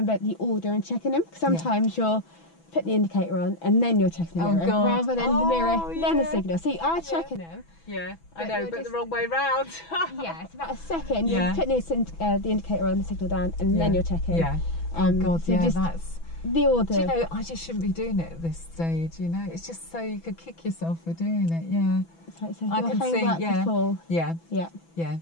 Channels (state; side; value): late; right; 6.0 ms